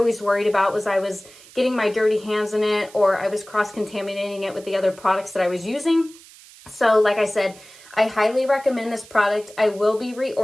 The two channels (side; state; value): right; noise; hiss, 22 dB below the sound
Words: worried about, was I was getting my dirty hands in it or I was cross-contaminating it with the other products that I was using. So like I said, I highly recommend this product. I will be